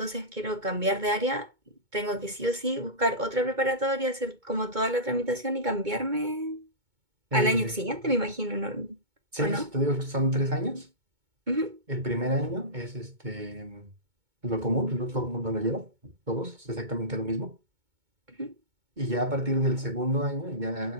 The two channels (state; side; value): late; left; 2.2 ms